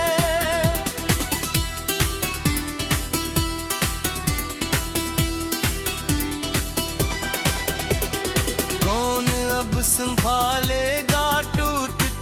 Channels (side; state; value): both; identical; correlation 1.00